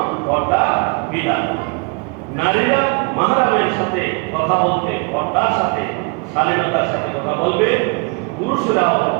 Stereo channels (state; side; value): quieter; left; 32.1 dB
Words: পর্দার বিধান। নারীরা মাহরামের সাথে কথা বলতে পর্দার সাথে শালীনতার সাথে কথা বলবে। পুরুষরাও